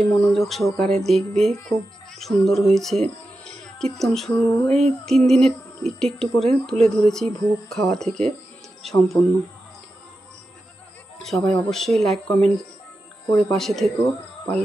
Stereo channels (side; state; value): both; normal; correlation 0.91